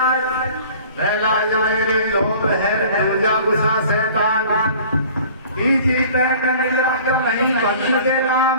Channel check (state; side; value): inverted; both; correlation -0.47